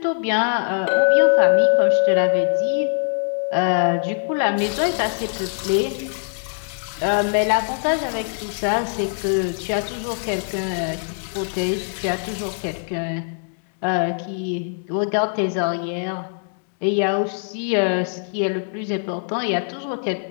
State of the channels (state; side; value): silent; right; 64 dB below the other